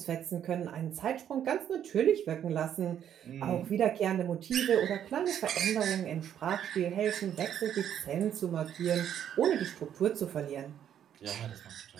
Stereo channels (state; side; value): quieter; left; 9.8 dB